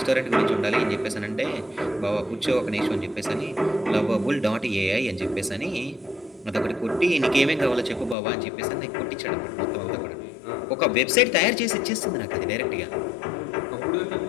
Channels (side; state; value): right; drops out; at 8.2 s